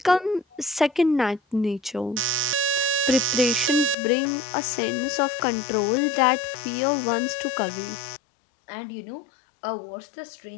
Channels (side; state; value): right; drops out; at 4.0 s